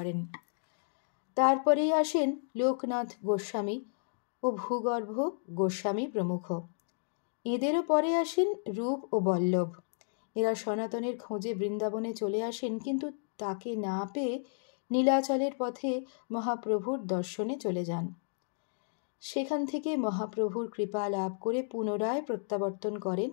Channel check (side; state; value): right; silent; digital silence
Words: তারপরেই আসেন লোকনাথ গোস্বামী ও ভূগর্ভ গোস্বামী প্রমুখ। এদেরও পরে আসেন রূপ ও বল্লভ। এরা সনাতনের খোঁজে বৃন্দাবনে চলে আসেন, কিন্তু তাকে না পেয়ে নীলাচলের পথে মহাপ্রভুর দর্শনে চলে যান। সেখান থেকে মহাপ্রভুর কৃপা লাভ করে পুনরায় প্রত্যাবর্তন করেন